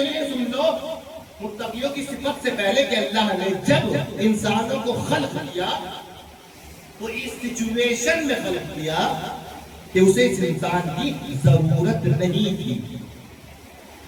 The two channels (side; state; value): both; identical; correlation 1.00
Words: یہ سن لو متقیوں کی صفت سے پہلے کہ اللہ نے جب انسانوں کو خلق کیا تو اس سچویشن میں خلق کیا کہ اسے اس انسان کی ضرورت نہیں تھی،